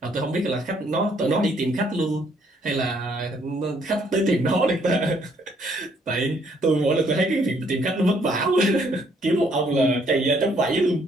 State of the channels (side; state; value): both; normal; correlation 0.67